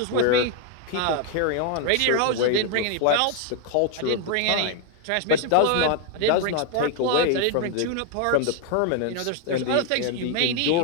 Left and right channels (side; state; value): both; different; correlation 0.01